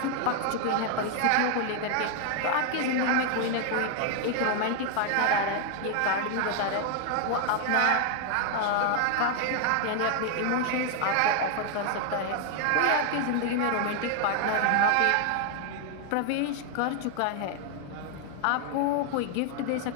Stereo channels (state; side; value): different; both; correlation 0.00